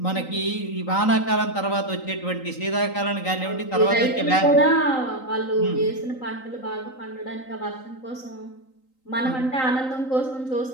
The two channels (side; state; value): right; late; 3.9 ms